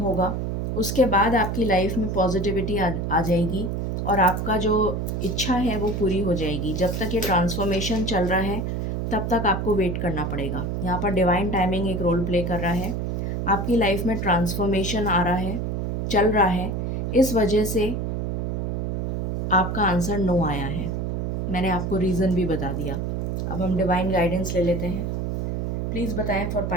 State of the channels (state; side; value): noise; right; hum, 1 dB below the sound